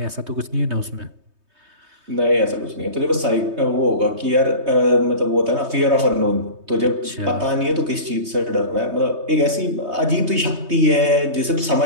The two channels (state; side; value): late; left; 3.2 ms